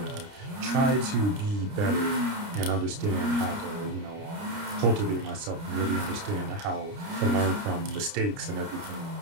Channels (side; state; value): left; late; 29 ms